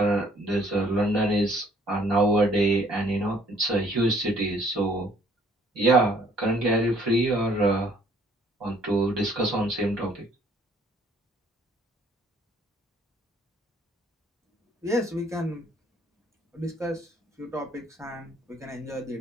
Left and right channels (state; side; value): normal; both; correlation 0.61